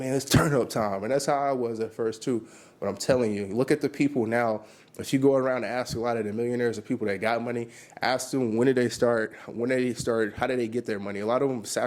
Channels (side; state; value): both; identical; correlation 1.00